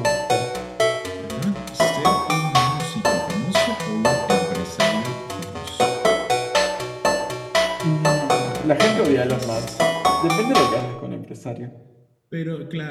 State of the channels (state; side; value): identical; both; correlation 1.00